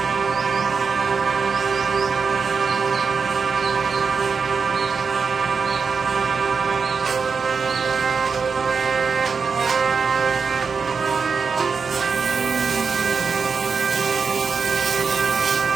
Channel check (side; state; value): left; quieter; 5.4 dB